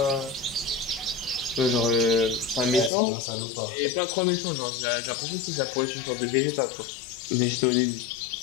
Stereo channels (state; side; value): drops out; right; at 2.9 s